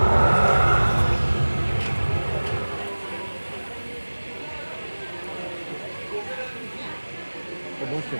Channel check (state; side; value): inverted; both; correlation -1.00